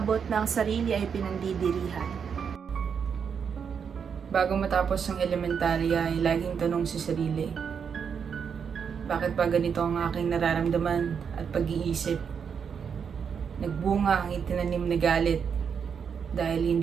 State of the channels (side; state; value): left; quieter; 6.9 dB